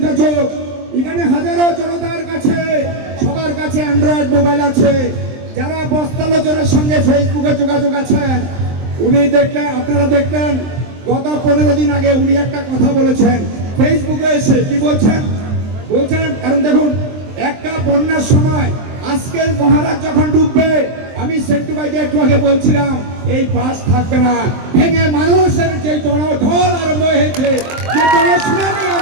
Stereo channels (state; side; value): late; left; 23 ms